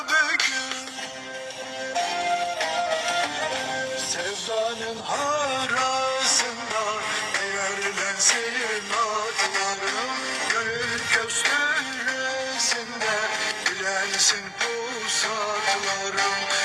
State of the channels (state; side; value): identical; both; correlation 1.00